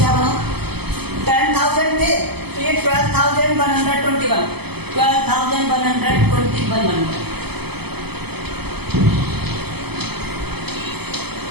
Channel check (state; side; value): late; left; 0.97 ms